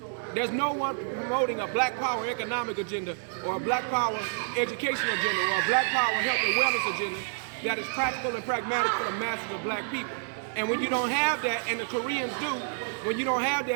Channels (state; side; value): silent; left; digital silence